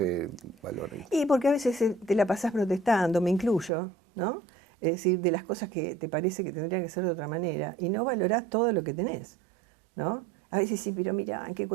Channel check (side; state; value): left; drops out; at 3.7 s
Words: valora? Y porque a veces te la pasás protestando, me incluyo, ¿no? Es decir, de las cosas que te parece que tendrían que ser de otra manera, y no valorás todo lo que tenés, ¿no? A veces sí, pero mira, ¿en qué